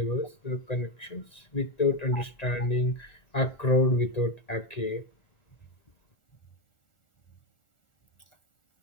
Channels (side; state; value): right; late; 1.9 ms